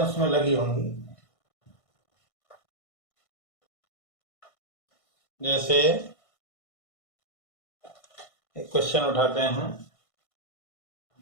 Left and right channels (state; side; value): late; right; 1.6 ms